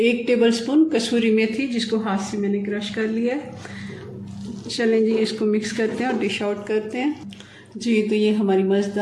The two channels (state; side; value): identical; both; correlation 1.00